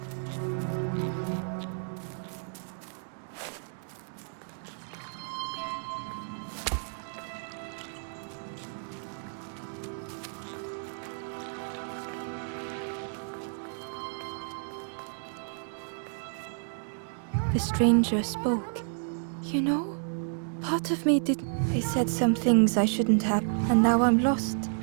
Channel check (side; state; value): left; silent; digital silence